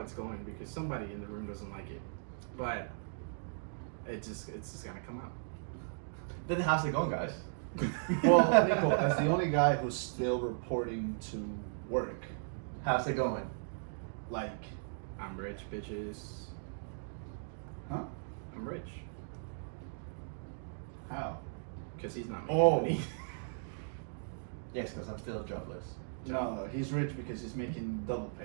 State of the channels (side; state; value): left; silent; digital silence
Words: it's going because somebody in the room doesn't like it, but it's just gonna come out. Then how's it going, guys? Well, Nico, as the only guy who's still reporting to work, How's it going? like, I'm rich, bitches. huh? I'm rich How? because he's not making Oh. money. Yes, because I'm still jobless. No, he's rich because he's making double